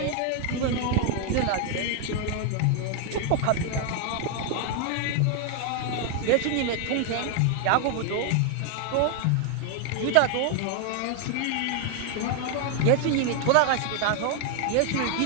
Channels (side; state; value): both; different; correlation 0.00